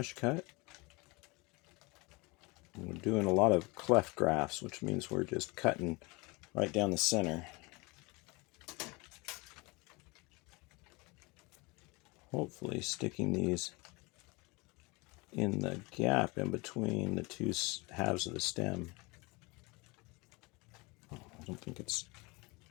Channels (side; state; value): right; quieter; 26.1 dB